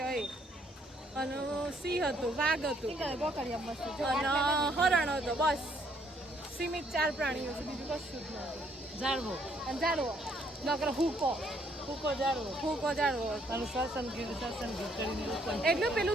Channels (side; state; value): both; normal; correlation 0.68